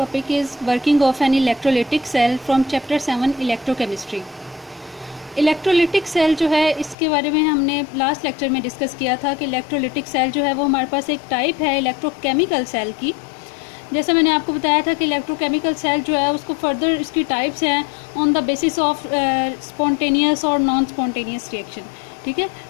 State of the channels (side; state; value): right; drops out; at 7.0 s